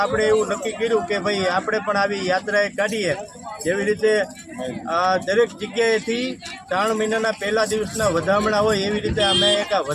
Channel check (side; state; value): both; identical; correlation 1.00